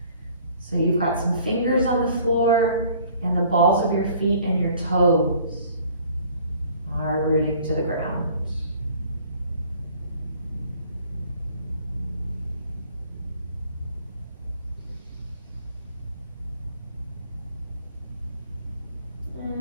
So you've got some fingers on the floor and the balls of your feet and your toes are rooting to the ground.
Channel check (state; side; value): inverted; both; correlation -0.54